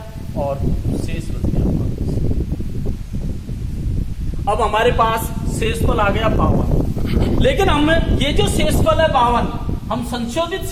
और शेष बच गया 5। अब हमारे पास शेषफल आ गया 52। लेकिन हम ये जो शेषफल है 52, हम संशोधित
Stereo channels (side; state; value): both; identical; correlation 1.00